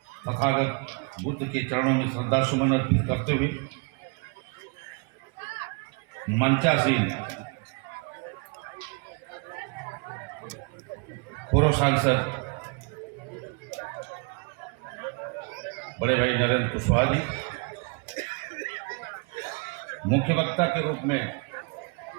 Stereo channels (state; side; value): quieter; left; 31.9 dB